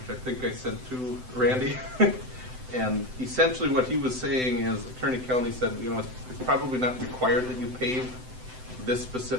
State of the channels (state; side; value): late; left; 7.8 ms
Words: I think I sent to Randy. And essentially what he was saying is, Attorney Kelly said, you know, it's probably not required that you pave this